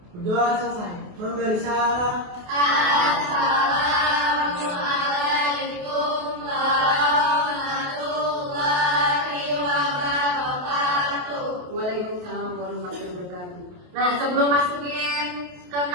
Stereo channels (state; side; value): late; left; 28 ms